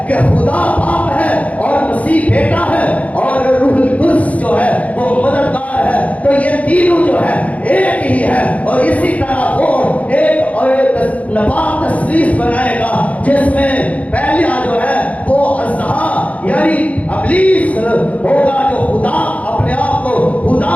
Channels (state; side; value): late; right; 0.068 ms